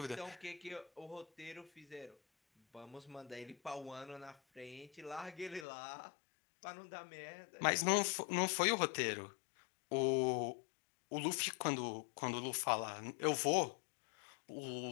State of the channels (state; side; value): drops out; right; at 5.7 s